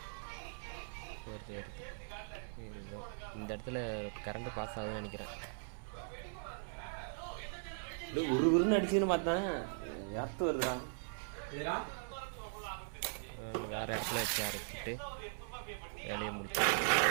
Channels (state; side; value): silent; left; 51 dB below the other